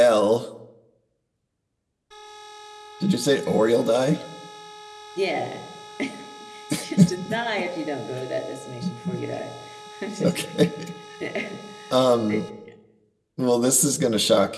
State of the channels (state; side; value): identical; both; correlation 1.00